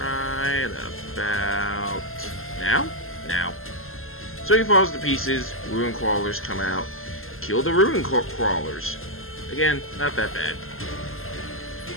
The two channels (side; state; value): right; late; 0.61 ms